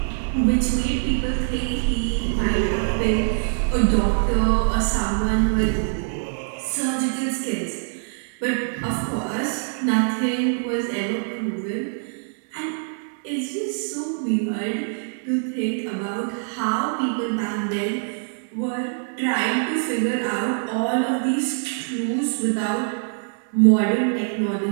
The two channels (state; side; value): silent; left; digital silence